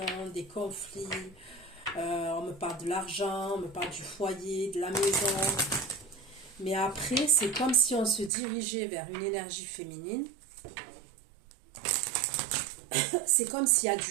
des conflits. On me parle de l'argent, on me parle du foyer, de la maison. Mais après, c'est comme si on se dirigeait vers une énergie féminine. C'est comme s'il y a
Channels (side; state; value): left; drops out; at 8.3 s